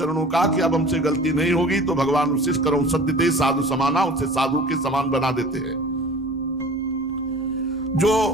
का कि अब हमसे गलती नहीं होगी, तो भगवान उसी करो सत्यते साधु समाना, उसे साधु के समान बना देते हैं। जो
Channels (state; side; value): normal; both; correlation 0.42